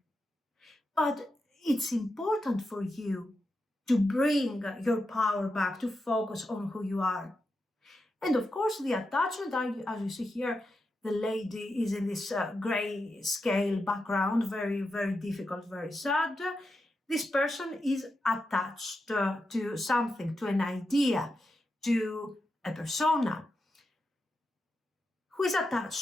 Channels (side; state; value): both; normal; correlation 0.88